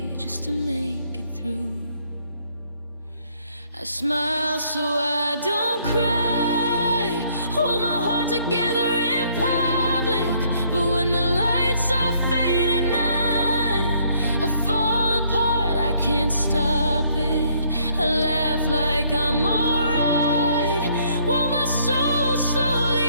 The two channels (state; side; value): inverted; both; correlation -0.66